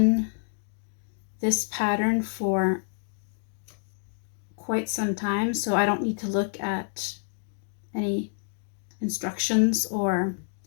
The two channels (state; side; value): silent; right; digital silence